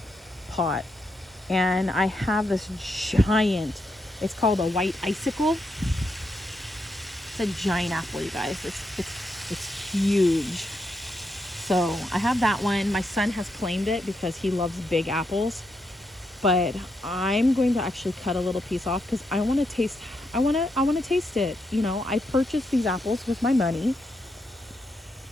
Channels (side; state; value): both; normal; correlation 0.81